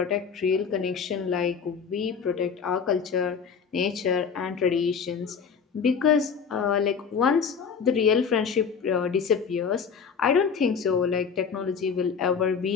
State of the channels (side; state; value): right; quieter; 6.3 dB